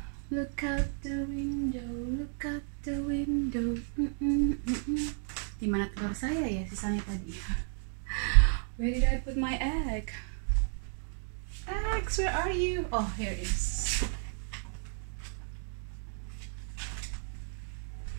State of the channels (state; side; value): silent; left; 56 dB below the other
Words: Look out the window. Dimana telur saya ya sisanya tadi? Where did I put my egg? Eggs, where are you? Oh, here it is.